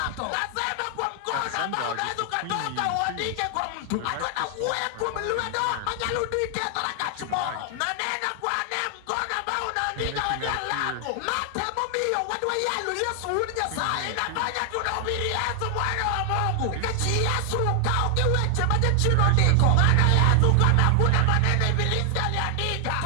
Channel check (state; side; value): different; both; correlation 0.00